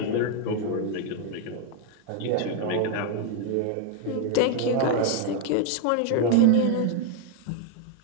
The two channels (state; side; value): different; both; correlation 0.01